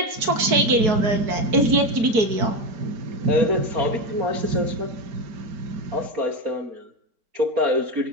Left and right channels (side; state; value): left; late; 4.6 ms